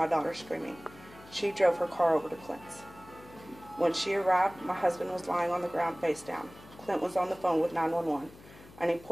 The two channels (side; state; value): left; noise; hum, 21 dB below the sound